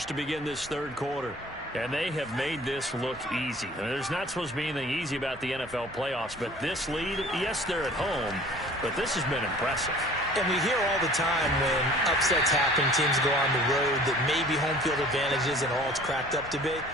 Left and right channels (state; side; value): normal; both; correlation 0.49